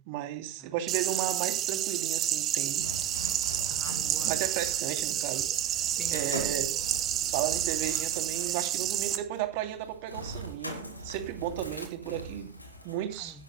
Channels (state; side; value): quieter; left; 10.3 dB